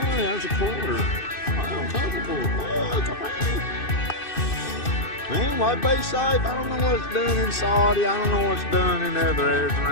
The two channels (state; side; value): late; right; 2.6 ms